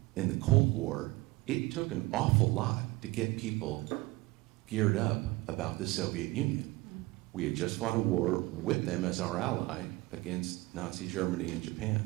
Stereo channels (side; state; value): left; quieter; 21.3 dB